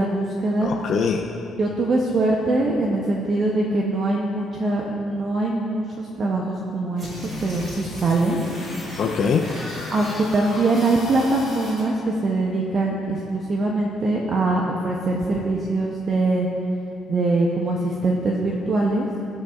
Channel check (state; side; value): normal; both; correlation 0.74